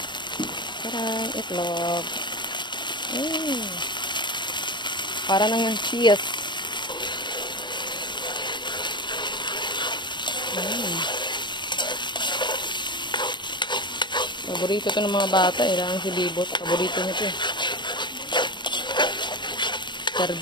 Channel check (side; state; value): right; late; 0.22 ms